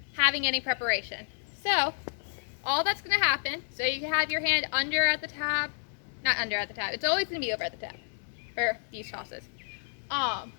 having any preparation. So, all that's going to happen, so you can have your hand under at the tab, not under at the tab, it's always going to be over at the tab for these tosses.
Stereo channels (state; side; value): silent; right; digital silence